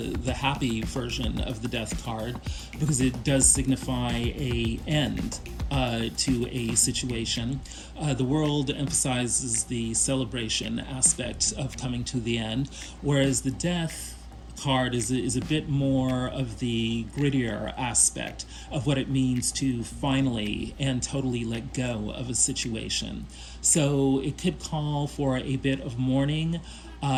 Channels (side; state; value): both; identical; correlation 1.00